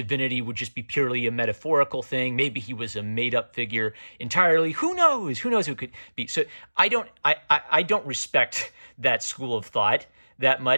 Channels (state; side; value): inverted; both; correlation -1.00